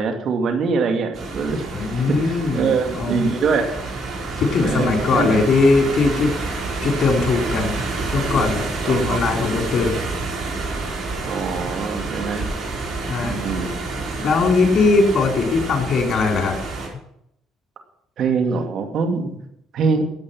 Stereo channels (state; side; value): normal; both; correlation 0.70